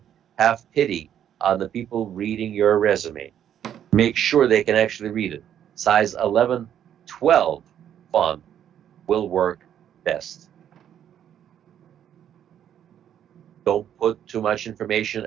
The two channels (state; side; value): quieter; left; 9.9 dB